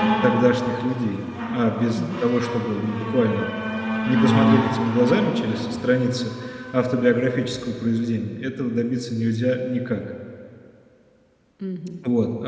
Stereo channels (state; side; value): identical; both; correlation 1.00